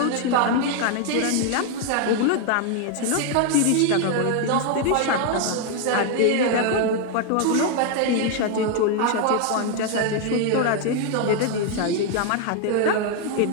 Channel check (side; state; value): both; different; correlation 0.01